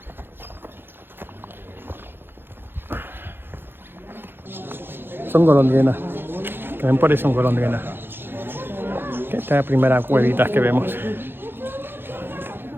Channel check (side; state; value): left; late; 0.10 ms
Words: Son golondrinas. Que ven por ahí son golondrinas. Esta es la primera cuevita que vemos.